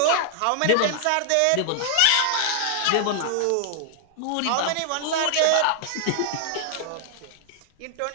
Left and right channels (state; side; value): different; both; correlation 0.00